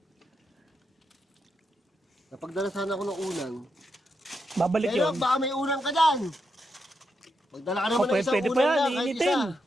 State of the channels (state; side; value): normal; both; correlation 0.83